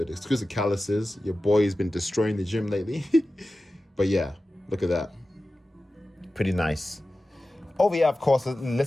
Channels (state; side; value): normal; both; correlation 0.95